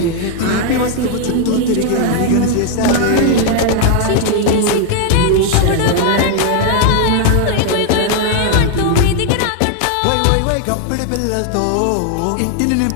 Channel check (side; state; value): both; different; correlation 0.00